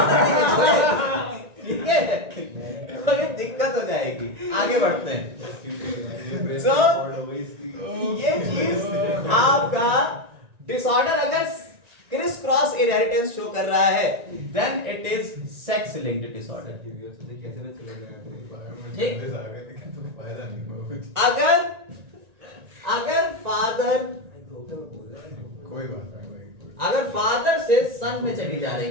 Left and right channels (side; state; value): left; late; 1.9 ms